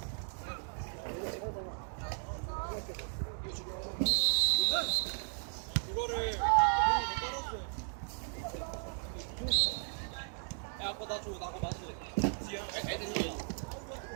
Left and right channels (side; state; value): left; silent; 54 dB below the other